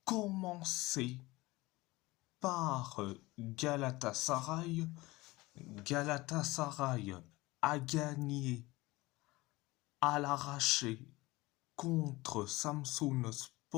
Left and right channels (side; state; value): right; quieter; 20.7 dB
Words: commencer par Galatasaray. Galatasaray a gagné à l'arraché contre